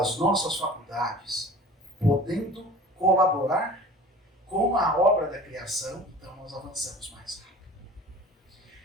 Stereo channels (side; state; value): both; normal; correlation 0.42